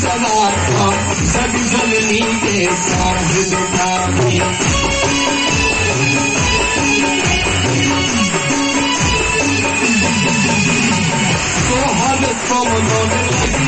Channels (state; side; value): identical; both; correlation 1.00